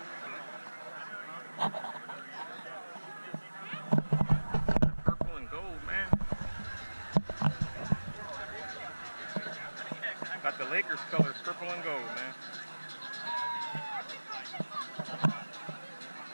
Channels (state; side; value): inverted; both; correlation -1.00